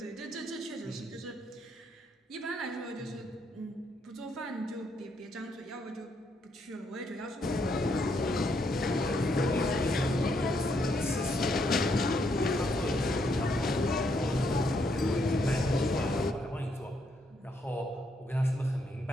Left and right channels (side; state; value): both; normal; correlation 0.75